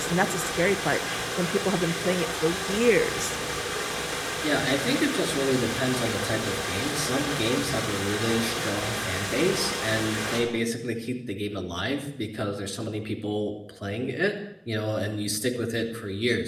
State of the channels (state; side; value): identical; both; correlation 1.00